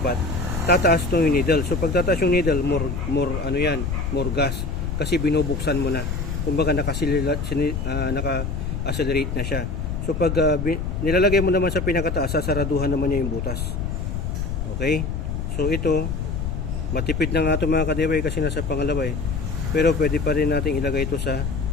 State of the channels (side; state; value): left; noise; rumble, 2 dB below the sound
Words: tataas to yung needle. So pag tataas yung needle, more ano yan, more gas kasi binubuksan mo na. Kumbaga naka-accelerate na siya. So pag nilalagay mo naman sa pinakataas, sasaraduhan naman niya yung butas. Okay? So ito, matipid na nga ito mga ka-DIY kasi nasa pangalawa eh. Pero pwede pa rin natin ilagay ito sa,